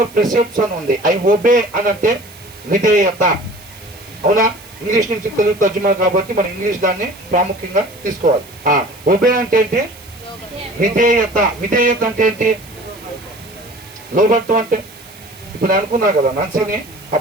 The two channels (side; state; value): right; noise; hiss, 22 dB below the sound